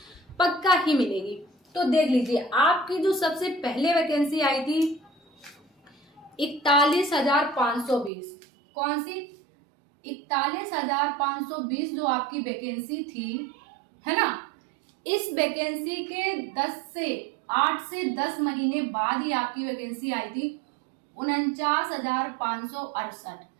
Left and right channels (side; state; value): left; drops out; at 8.1 s